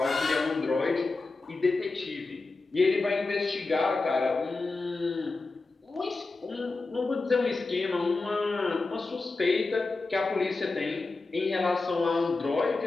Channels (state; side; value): quieter; right; 3.6 dB